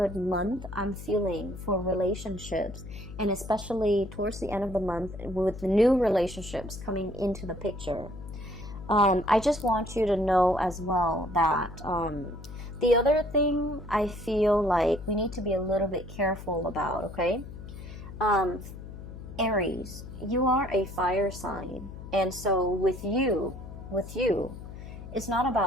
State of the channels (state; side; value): noise; left; hum, 12 dB below the sound